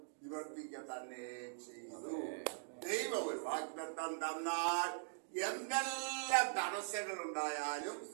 നിവർത്തിക്ക തന്നെ ചെയ്തു. ദൈവം ഒരു വാഗ്ദത്തം തന്നാൽ എന്തെല്ലാം തടസ്സങ്ങൾ ഉണ്ടായാലും,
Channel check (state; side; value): silent; left; digital silence